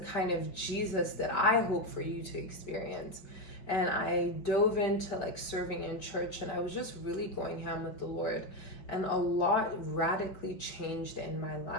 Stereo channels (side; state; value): right; late; 5.3 ms